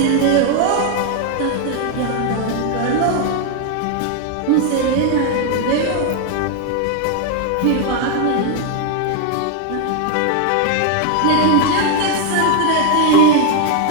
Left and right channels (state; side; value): different; both; correlation 0.01